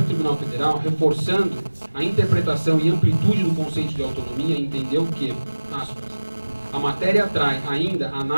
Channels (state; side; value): inverted; both; correlation -1.00